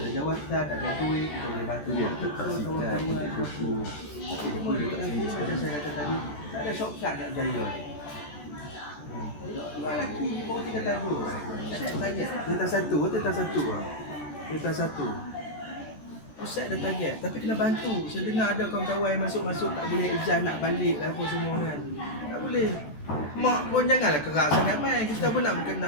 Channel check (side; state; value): right; late; 14 ms